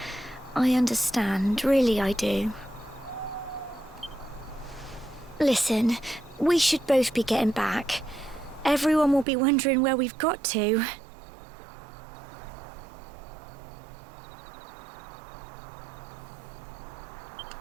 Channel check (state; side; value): drops out; left; at 9.2 s